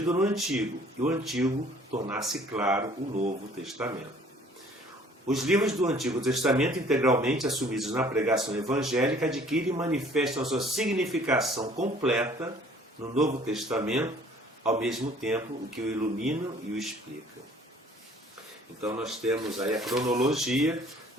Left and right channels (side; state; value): both; normal; correlation 0.55